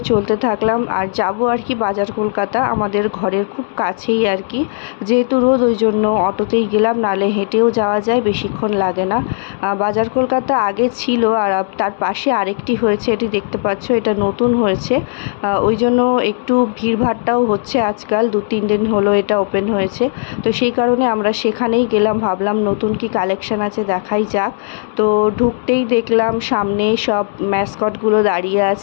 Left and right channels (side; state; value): right; silent; digital silence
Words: চলতে থাকলাম, আর যাব আর কি বাজার কলকাতা, আমাদের ঘরের খুব কাছেই আর কি। যেহেতু রোদ, ওই জন্য অটোতেই গেলাম, নালে হেঁটেও যাওয়া যায়, বেশিক্ষণ লাগে না। বাজার কলকাতা আগে ছিল, আর তার পাশে আরেকটি হয়েছে, এটি দেখতে পাচ্ছ, এটা নতুন হয়েছে। ওই জন্য একটু ভিড়ভাড়টাও হচ্ছে আজকাল, 2-3 দিন হলো এটা ওপেন হয়েছে। তো সেই কারণে আমরা সেখানেই গেলাম, ভাবলাম নতুন কি কালেকশান আছে দেখাই যাক। তো ঢুকতেই দেখলাম সামনে সব ম্যাসকটগুলো দাঁড়িয়ে